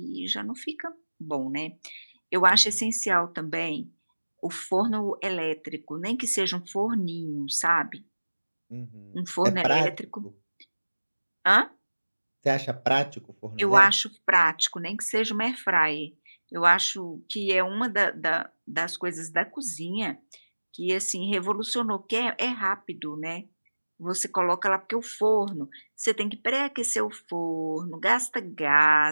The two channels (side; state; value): both; inverted; correlation -1.00